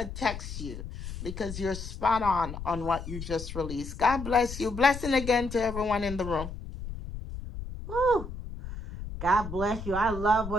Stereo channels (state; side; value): noise; left; rumble, 9 dB below the sound